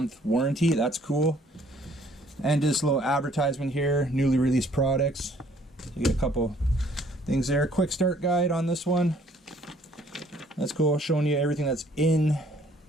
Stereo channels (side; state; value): both; normal; correlation 0.60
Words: warranty. That's cool. And this little advertisement here, newly released products. You get a couple things there. Quick start guide on this one. That's cool, showing you everything that's in